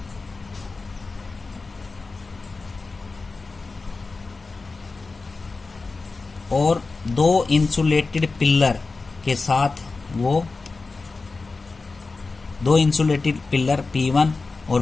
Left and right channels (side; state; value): right; quieter; 3.9 dB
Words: और दो इंसुलेटेड पिलर के साथ वो दो इंसुलेटेड पिलर P1 और